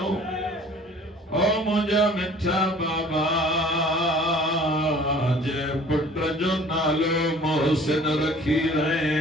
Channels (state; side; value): normal; both; correlation 0.50